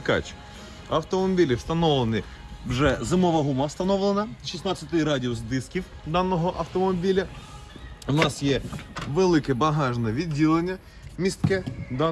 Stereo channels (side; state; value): both; identical; correlation 1.00